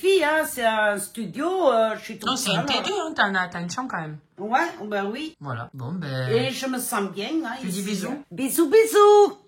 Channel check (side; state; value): both; identical; correlation 1.00